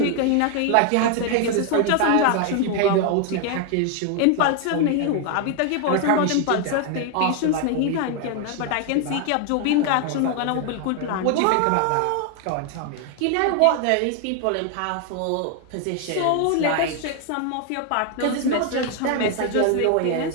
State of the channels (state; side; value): different; both; correlation 0.00